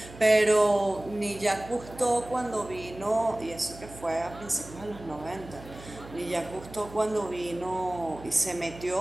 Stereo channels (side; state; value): right; noise; hum, 17 dB below the sound